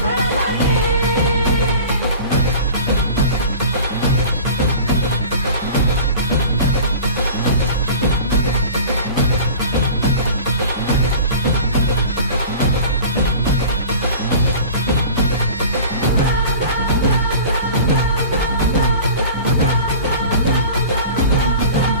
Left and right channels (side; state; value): both; inverted; correlation -0.39